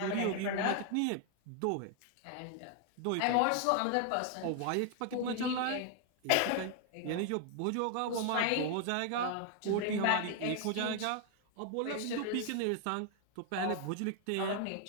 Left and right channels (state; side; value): different; both; correlation 0.00